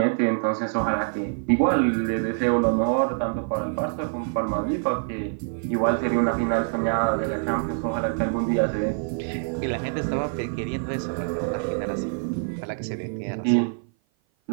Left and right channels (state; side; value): silent; left; 56 dB below the other